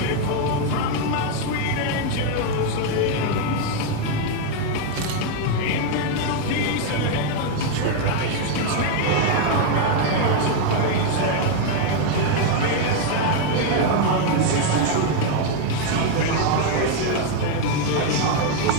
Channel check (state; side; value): different; both; correlation 0.01